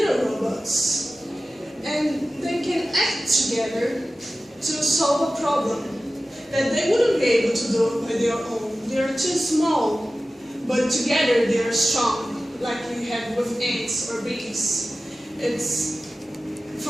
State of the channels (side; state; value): both; normal; correlation 0.95